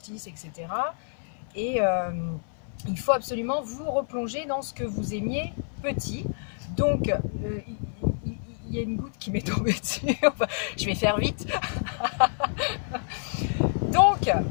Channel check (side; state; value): right; silent; 56 dB below the other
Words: etc. Et il faut absolument vous replonger dans ce que vous aimiez petit. Donc, il y a une goutte qui m'est tombée dessus. Je vais faire vite. Donc,